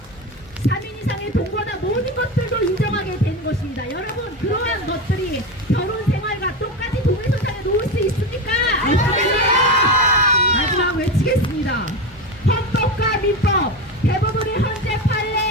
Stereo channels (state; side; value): normal; both; correlation 0.19